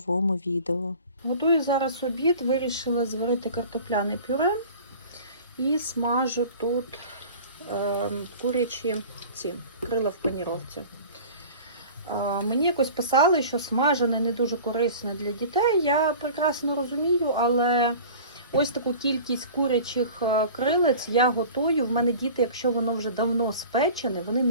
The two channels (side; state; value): both; inverted; correlation -0.41